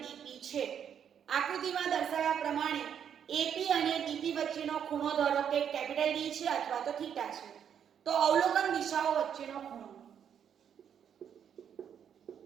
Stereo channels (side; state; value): left; quieter; 8.5 dB